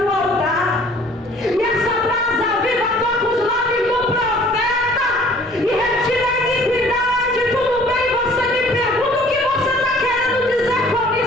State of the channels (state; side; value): normal; both; correlation 0.53